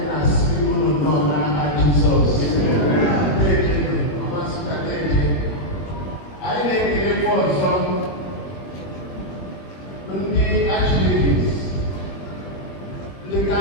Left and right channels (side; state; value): right; late; 21 ms